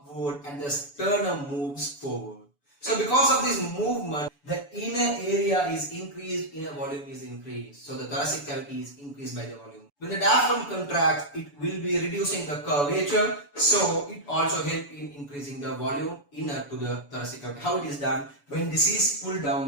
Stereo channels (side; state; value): right; late; 7.0 ms